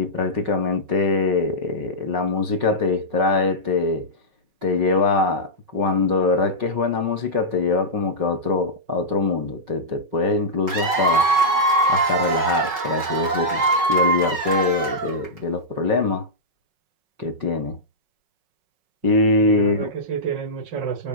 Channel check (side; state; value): left; late; 5.3 ms